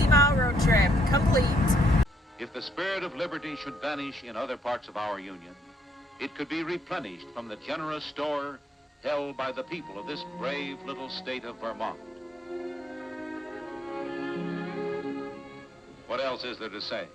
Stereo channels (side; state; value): both; normal; correlation 0.71